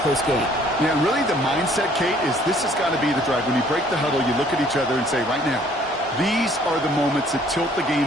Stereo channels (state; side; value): normal; both; correlation 0.59